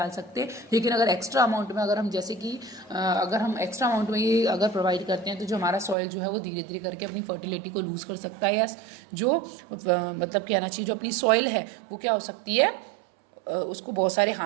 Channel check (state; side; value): drops out; left; at 6.0 s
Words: सकते। लेकिन अगर एक्स्ट्रा अमाउंट में, अगर हम जैसे कि अगर हम एक्स्ट्रा अमाउंट में ये अगर प्रोवाइड करते हैं तो जो हमारा सॉइल जो है वो धीरे धीरे करके अपनी फर्टिलिटी को लूज़ कर सकता है, या जो मतलब कहना चाहिए जो अपनी सॉइल है वो क्या हो सकती है, उसको बहुत सारे